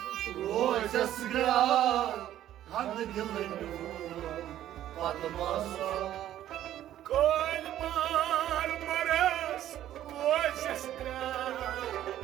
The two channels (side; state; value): left; quieter; 12.3 dB